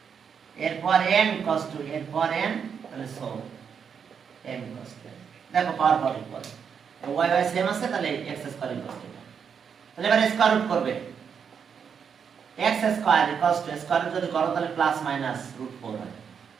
এরপর m ইকুয়ালস টু এরপর m তাহলে সো m ইকুয়ালস টু দেখো power power equal y y same আছে তাহলে x স্কয়ার ইকুয়ালস টু তাহলে এবার স্কয়ার রুট করবে x square equals to square root যদি করো তাহলে প্লাস মাইনাস রুট 4 হয়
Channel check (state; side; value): quieter; left; 6.9 dB